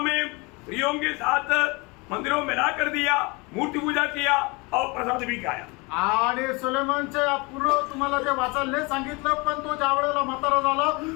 में स्त्रियों के साथ मंदिरों में ला कर दिया, मूर्ति पूजा किया और प्रसाद भी खाया। आणि सुलेमानचे पूर्ण तुम्हाला ते वाचायला नाही सांगितलं, पण तो ज्या वेळेला म्हातारा झाला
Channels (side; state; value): right; quieter; 26.9 dB